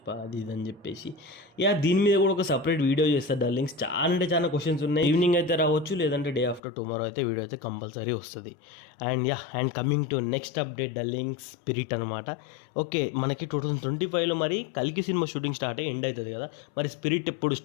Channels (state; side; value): drops out; right; at 6.6 s